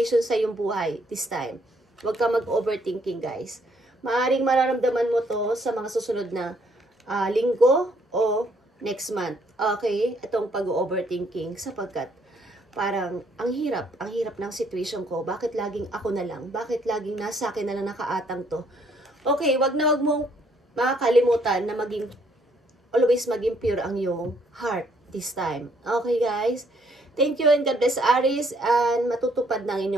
sa iyong buhay this time. Huwag ka mag-overthinking, guys. Maaring mararamdaman mo to sa mga susunod na linggo o next month. Okay? Itong pag-overthinking sapagkat parang ang hirap ng situation ko. Bakit laging ako na lang? Bakit laging nasa akin na lang nakaatang to? Okay, wag mong makakalimutan na always maging pure ang iyong heart this time. Okay, guys? Thank you and God bless, Aries, and matutupad ng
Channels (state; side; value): normal; both; correlation 0.67